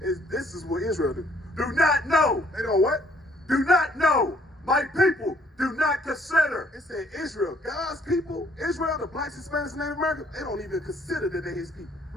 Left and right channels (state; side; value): normal; both; correlation 0.64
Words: this is what Israel do. Do not know. They don't what? Do not know. My people do not consider. It said Israel, God's people, Israel, the blacks, Hispanics, and Native Americans, they don't even consider that they his people.